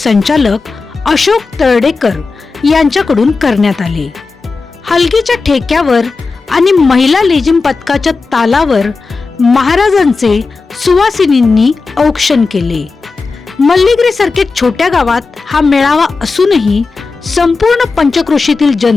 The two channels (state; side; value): quieter; right; 4.2 dB